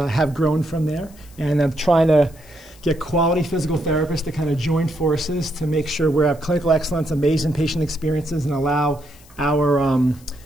grown from there. And I'm trying to get quality physical therapists to kind of join forces to make sure we have clinical excellence, amazing patient experiences, and allow our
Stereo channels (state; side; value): noise; left; hiss, 26 dB below the sound